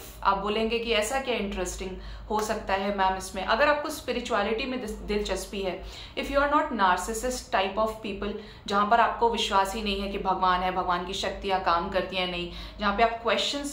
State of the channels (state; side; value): identical; both; correlation 1.00